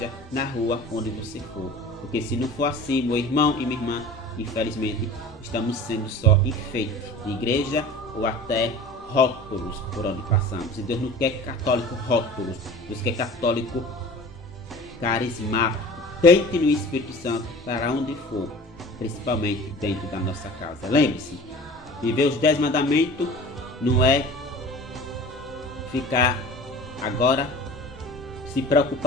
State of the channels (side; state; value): both; normal; correlation 0.40